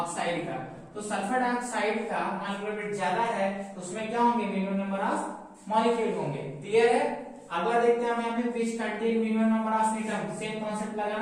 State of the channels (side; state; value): both; identical; correlation 1.00